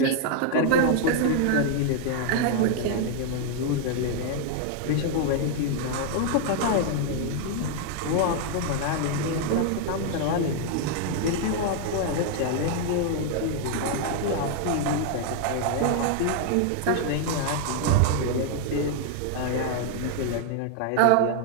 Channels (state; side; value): different; both; correlation 0.00